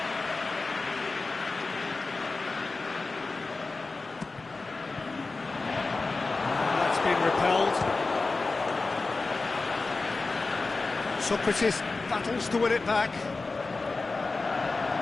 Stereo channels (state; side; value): quieter; right; 3.7 dB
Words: That's been repelled. Socrates battles to win it back.